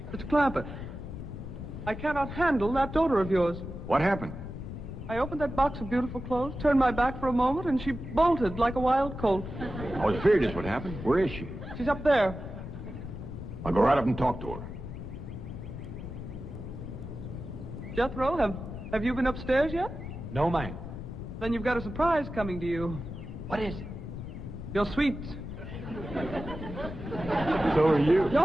Mr. Clampett, I cannot handle that daughter of yours. What happened? I opened that box of beautiful clothes, turned my back for a moment, and she bolted like a wild colt. I was afraid this would happen. Where is she? She's up there. I'll go right up and talk to her. Jethro, have you been upstairs yet? No, ma'am. Then you've got a surprise coming to you. What is it? Your sweets. So are you.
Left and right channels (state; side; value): noise; left; rumble, 9 dB below the sound